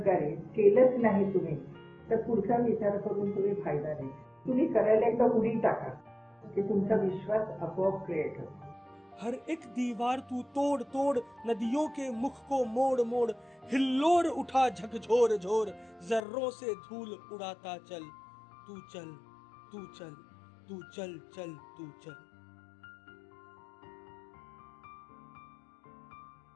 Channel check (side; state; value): right; drops out; at 16.2 s